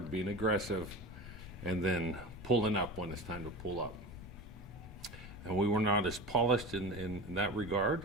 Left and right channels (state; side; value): normal; both; correlation 0.30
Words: being aggressive, and then pulling up when it's time to pull up. And we were not as polished in that regard.